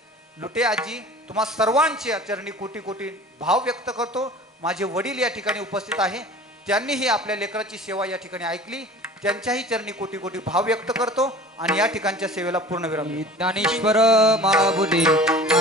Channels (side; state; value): both; normal; correlation 0.42